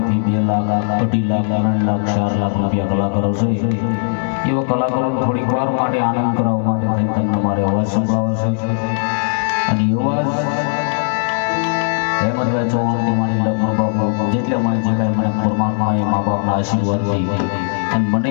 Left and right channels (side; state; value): right; silent; digital silence